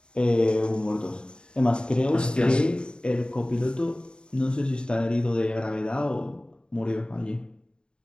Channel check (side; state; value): right; late; 0.051 ms